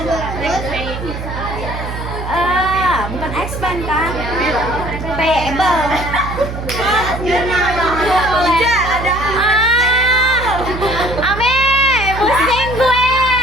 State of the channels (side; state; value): right; noise; hum, 7 dB below the sound